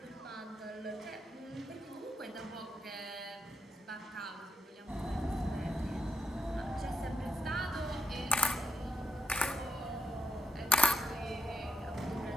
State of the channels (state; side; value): normal; both; correlation 0.82